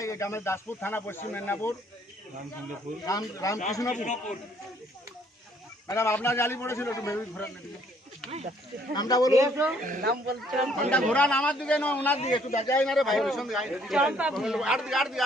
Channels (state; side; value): normal; both; correlation 0.64